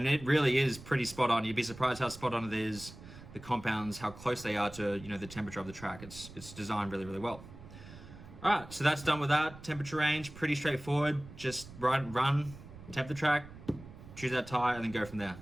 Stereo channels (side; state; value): right; noise; rumble, 16 dB below the sound